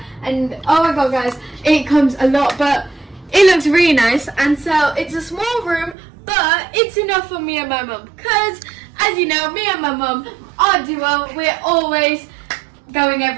And oh my god, guys, it comes a lot, but it looks really nice, and so it's a small room, but it's enough for me and my mum. Because, as you know, me and my mum, our duo, we're always going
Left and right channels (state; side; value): drops out; left; at 6.0 s